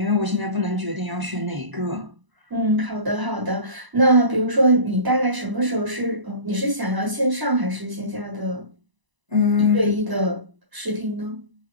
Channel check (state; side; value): late; left; 1.0 ms